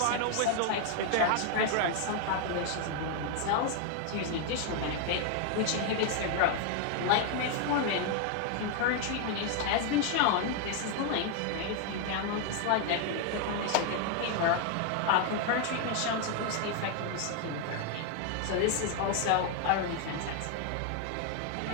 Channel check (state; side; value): different; both; correlation 0.00